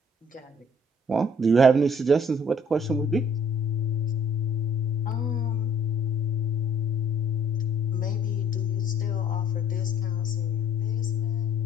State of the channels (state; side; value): normal; both; correlation 0.59